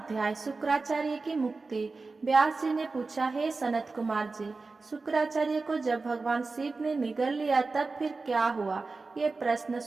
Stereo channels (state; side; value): quieter; left; 3.9 dB